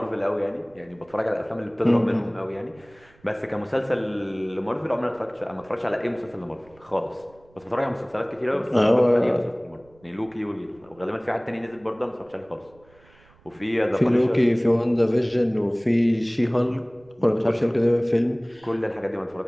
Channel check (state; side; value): noise; right; rumble, 29 dB below the sound